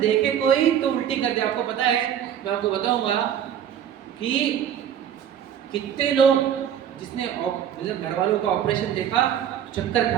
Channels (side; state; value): left; quieter; 9.5 dB